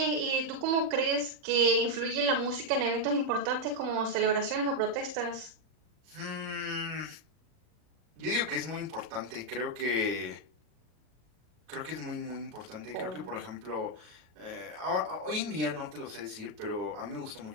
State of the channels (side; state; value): left; late; 40 ms